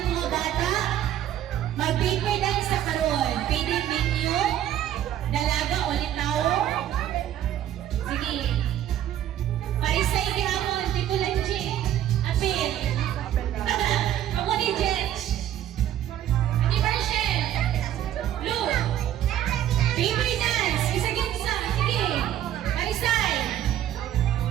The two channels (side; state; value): left; quieter; 11.5 dB